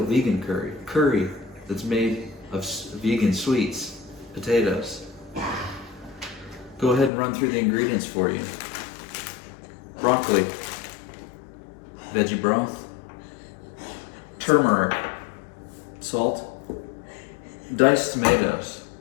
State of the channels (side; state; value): right; drops out; at 7.1 s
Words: curry. Curry that's made of vegan sweets, potatoes. Go ahead and run through the ingredients for you. Broccoli, veggie broth, turmeric, salt, diced tomatoes.